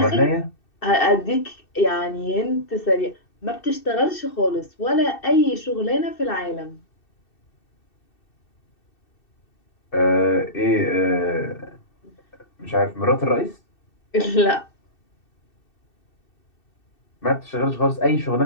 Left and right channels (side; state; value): right; late; 2.7 ms